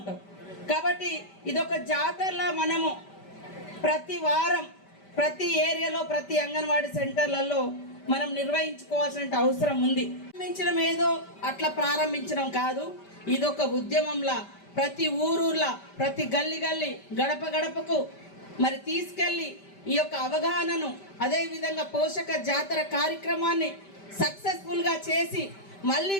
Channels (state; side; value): late; right; 5.1 ms